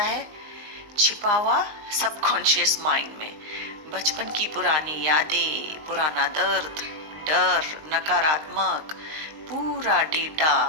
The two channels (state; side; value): late; left; 20 ms